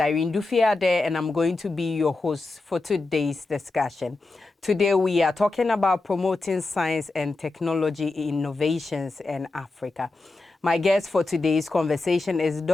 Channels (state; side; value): quieter; right; 3.3 dB